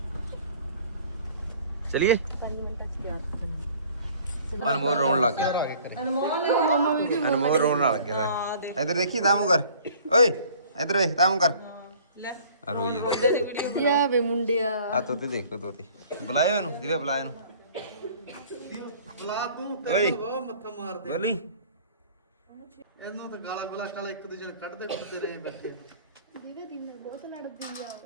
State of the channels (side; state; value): both; inverted; correlation -0.51